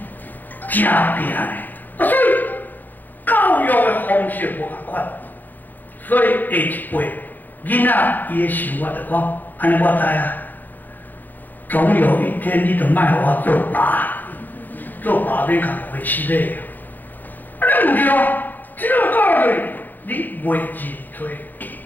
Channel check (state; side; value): late; right; 0.088 ms